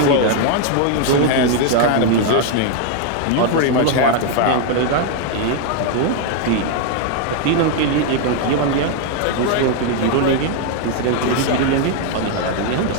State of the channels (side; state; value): both; different; correlation 0.00